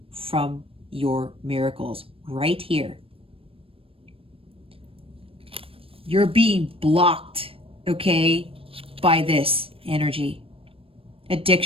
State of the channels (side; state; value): left; late; 0.27 ms